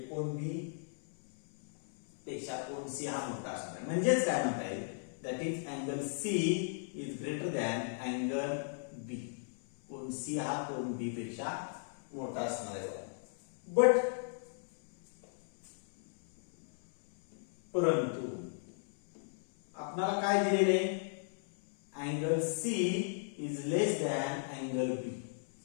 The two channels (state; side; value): silent; right; 54 dB below the other